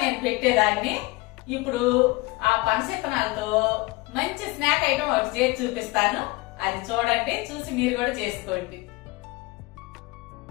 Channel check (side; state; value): right; quieter; 22.8 dB